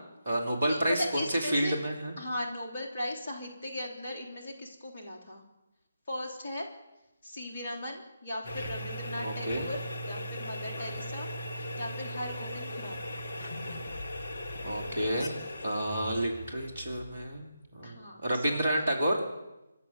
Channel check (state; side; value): inverted; both; correlation -0.84